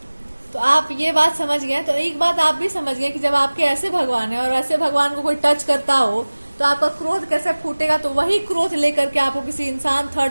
तो आप ये बात समझ गए। तो एक बात आप भी समझ गए कि जब आपके ऐसे भगवान है और ऐसे भगवान को कोई टच करता हो तो आपका क्रोध कैसे फूटेगा। तो वही क्रोध लेकर के आपको किसी इंसान,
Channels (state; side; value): inverted; both; correlation -1.00